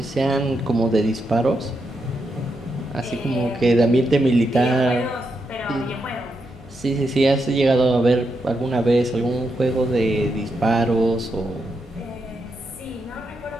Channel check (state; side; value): normal; both; correlation 0.83